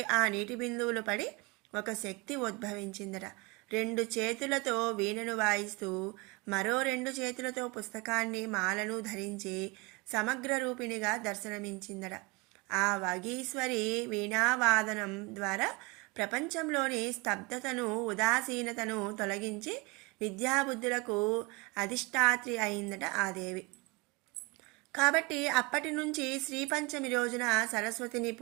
ఆ నీటి బిందువులు పడి ఒక శక్తి ఉద్భవించిందట. 2 చేతులతో వీణను వాయిస్తూ మరో 2 చేతులతో పుస్తకాన్ని మాలను ధరించి సమగ్ర రూపిణిగా దర్శనమించిందట. ఆ వగీశ్వరి వీణావాదనం ద్వారా ప్రపంచంలోని స్తబ్దతను ఉదాసీనతను తొలగించి విద్యాబుద్ధులకు అధిష్టాత్రి అయిందట ఆ దేవి. కాబట్టి అప్పటి నుంచి శ్రీపంచమి రోజున సరస్వతిని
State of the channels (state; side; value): quieter; left; 26.5 dB